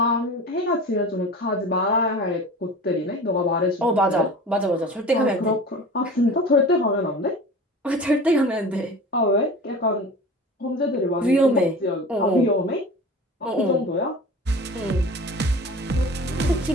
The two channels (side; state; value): both; normal; correlation 0.37